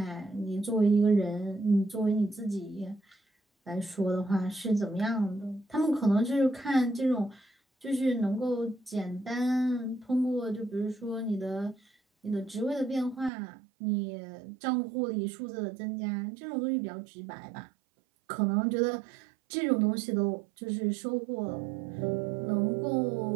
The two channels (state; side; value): drops out; left; at 13.3 s